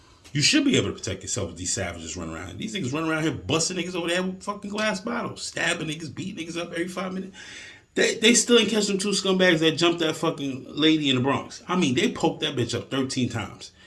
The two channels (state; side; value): identical; both; correlation 1.00